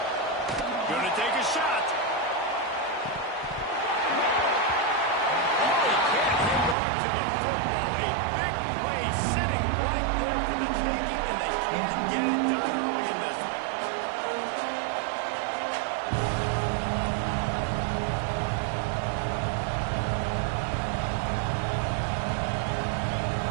Gonna take a shot. Oh, he can't hang on to the football. A big play sitting right there for the taking, and they can't get it done early in this one.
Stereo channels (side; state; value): left; drops out; at 6.8 s